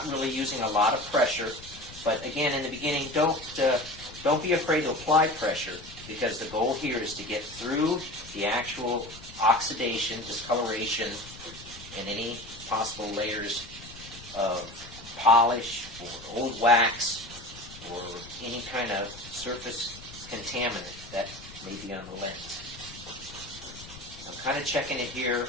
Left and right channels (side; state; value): left; noise; rumble, 17 dB below the sound